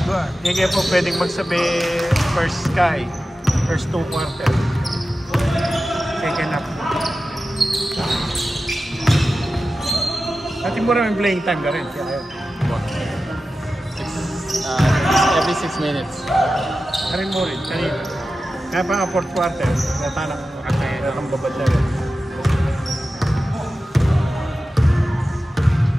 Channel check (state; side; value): normal; both; correlation 0.93